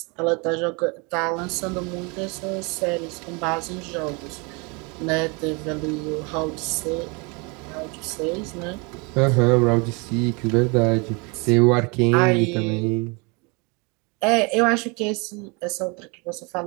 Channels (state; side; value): quieter; left; 30.2 dB